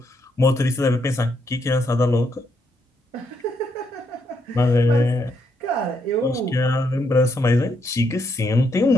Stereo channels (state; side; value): normal; both; correlation 0.76